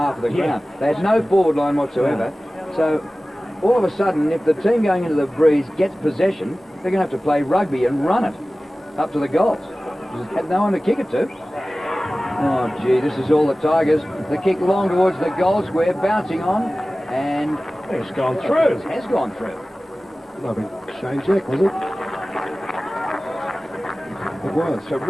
of the ground. They had no forward line whatsoever. So all of a sudden, if the team going into the breeze gets possession, they're going to have to play rugby and run it up to the goals. They had no one to kick it to. Oh, gee, this is all the Tigers. The kick long towards the goal square, bouncing on, and it's gone through. It has gone through. Lovely Shane Jack, was it? It was.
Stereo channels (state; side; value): normal; both; correlation 0.97